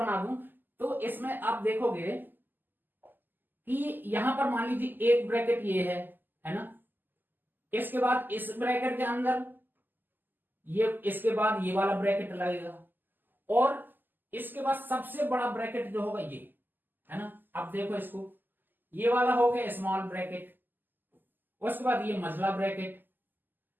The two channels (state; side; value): late; left; 0.089 ms